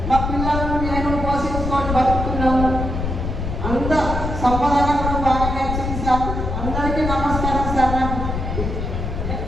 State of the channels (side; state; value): left; noise; rumble, 3 dB below the sound